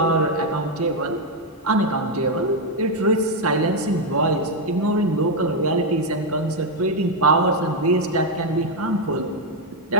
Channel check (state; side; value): normal; both; correlation 0.02